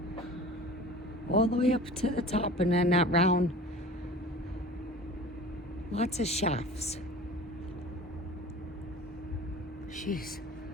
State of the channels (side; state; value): both; normal; correlation 0.40